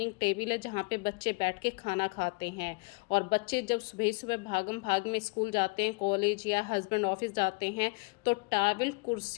टेबल है जहाँ पे बच्चे बैठ के खाना खाते हैं। और बच्चे जब सुबह सुबह भागम भाग में स्कूल जाते हैं, कॉलेज या हस्बैंड ऑफिस जाते हैं, तो टावल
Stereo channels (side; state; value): right; quieter; 30.2 dB